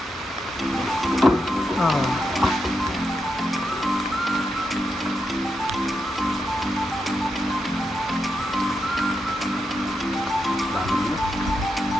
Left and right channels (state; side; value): normal; both; correlation 0.85